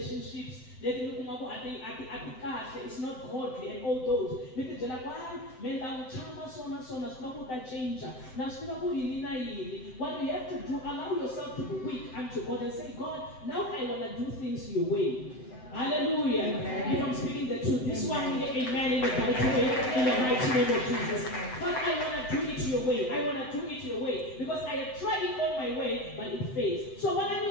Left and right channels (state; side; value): late; right; 7.8 ms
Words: It's not godly and all those. What we have to do, allow yourself to be weak unto God and say, God, now I want to do things your way. Hallelujah. If I'm speaking the truth, this one, amen, in the mighty name of Jesus. But I want to do it your way. I want to do it your way. Because I have tried it all my way, but it fails. So when